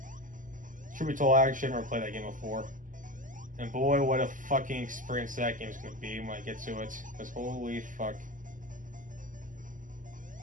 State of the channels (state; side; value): late; left; 0.38 ms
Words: Truth be told, I actually never played that game before. And boy, what a fucking experience that game's gonna be when I get to it. Because holy fuck.